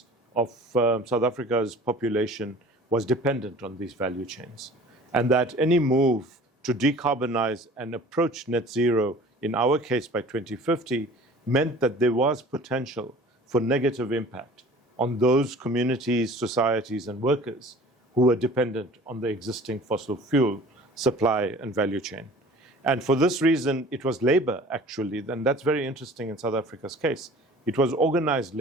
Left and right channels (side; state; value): both; normal; correlation 0.45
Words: of South Africa's population was dependent on these value chains. And that any move to decarbonize and approach net zero, in our case by 2050, meant that there was potential for negative impact on those communities, societies, and workers who were dependent on the existing fossil fuel supply and value chain. And for this reason, it was labor, actually, and that's very interesting in South Africa's case. It was organized